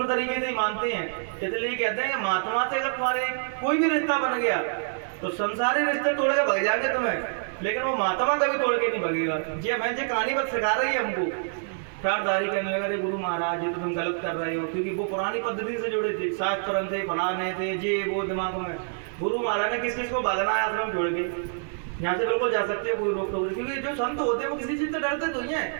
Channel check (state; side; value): silent; left; digital silence